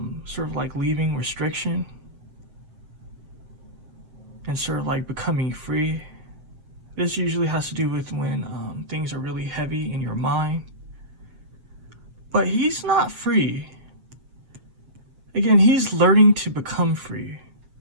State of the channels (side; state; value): left; late; 7.4 ms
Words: sort of like leaving restriction and sort of like becoming free. This usually has to do with when things are really heavy in your mind. But he's not free. Again, he's learning to become free.